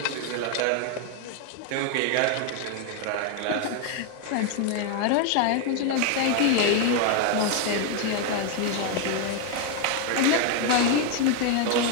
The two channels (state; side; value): different; both; correlation 0.01